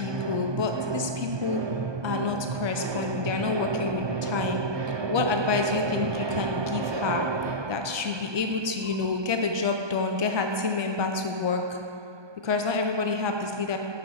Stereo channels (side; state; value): left; late; 1.2 ms